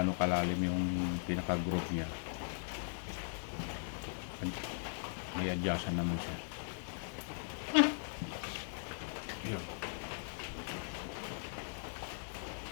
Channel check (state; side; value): silent; right; 52 dB below the other